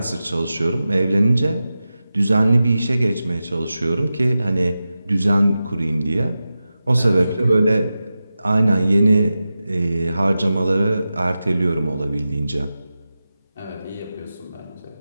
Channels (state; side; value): inverted; both; correlation -0.93